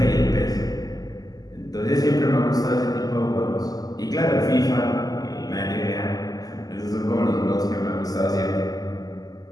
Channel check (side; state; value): right; late; 0.18 ms